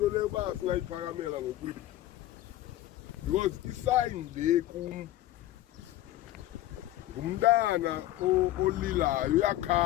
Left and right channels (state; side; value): quieter; right; 14.4 dB